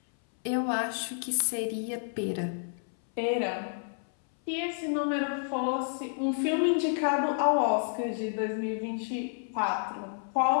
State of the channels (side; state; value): right; silent; 58 dB below the other